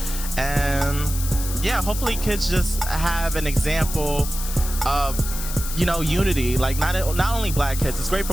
And yeah, hopefully kids just have an example of, you know, unity. Like not only black kids. It's great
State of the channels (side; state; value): left; noise; hiss, 8 dB below the sound